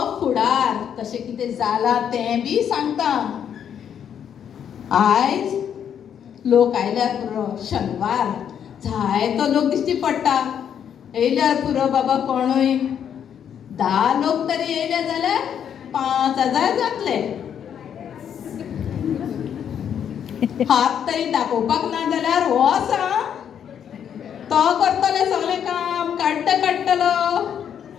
फुडार, तशें कितें जालां तें बी सांगता. आयज लोक आयल्यार पुरो, शेनवार जायतो लोक दिश्टी पडटा. येयल्यार पुरो बाबा कोणूय. 10 लोक तरी येयले जाल्यार 5,000 जातले. हात तरी दाखोवपाक ना जाल्यार हो आसा, तो करतले सगळें काम, काडटलो.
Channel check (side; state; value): right; quieter; 8.7 dB